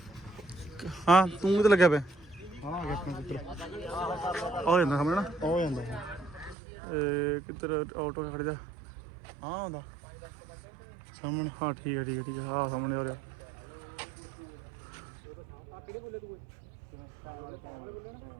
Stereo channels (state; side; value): drops out; left; at 6.6 s